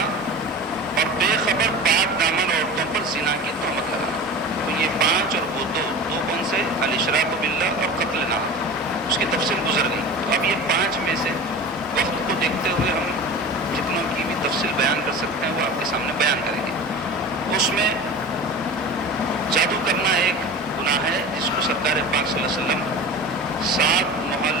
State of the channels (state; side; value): normal; both; correlation 0.34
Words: اور بے خبر پاک دامن عورتوں پر زنا کی تہمت لگانا. تو یہ 5 اور وہ دو کون سے؟ الاشراک باللہ اور قتل ناحق. اس کی تفصیل گزر گئی. تو اب یہ 5 میں سے وقت کو دیکھتے ہوئے ہم جتنوں کی بھی تفصیل بیان کر سکتے ہیں وہ آپ کے سامنے بیان کریں گے. اس میں جادو کرنا ایک گناہ ہے جس کو سرکار پاک صلی اللہ علیہ وسلم 7